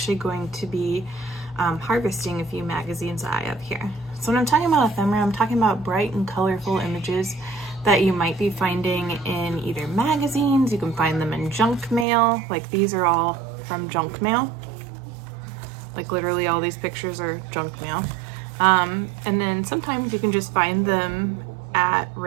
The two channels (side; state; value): left; drops out; at 12.1 s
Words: going to be harvesting a few magazines that I have here. So when I'm talking about ephemera, I'm talking about bright and colorful images that you might be finding in either magazines. You can find them in junk mail, like these are all from junk mail. Like literally all these pictures are junk mail. And then sometimes you can just find them at